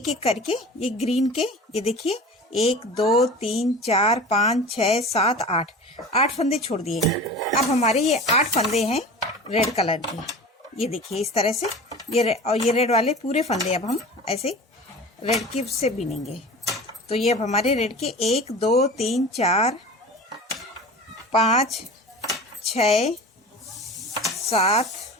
एक करके ये ग्रीन के ये देखिए 1 2 3 4 5 6 7 8 फंदे छोड़ दिए। अब हमारे ये 8 फंदे हैं रेड कलर के। ये देखिए इस तरह से ये रेड वाले पूरे फंदे अब हम ऐसे रेड की से बिनेंगे। तो ये अब हमारे रेड के 1 2 3 4 5 6 7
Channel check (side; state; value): both; normal; correlation 0.36